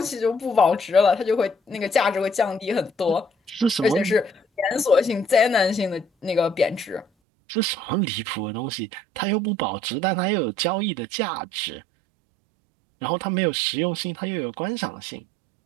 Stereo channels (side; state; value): left; drops out; at 7.1 s